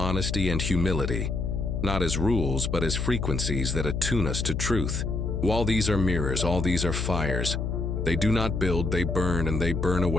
and humility. Not as rules, but as frequencies that attune us to truth. All these are mirrors, all these are fires. They do not build, they burn, and they burn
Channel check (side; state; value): left; noise; hum, 1 dB below the sound